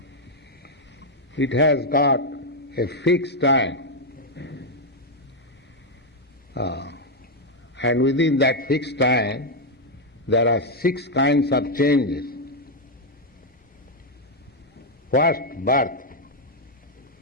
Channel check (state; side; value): normal; both; correlation 0.01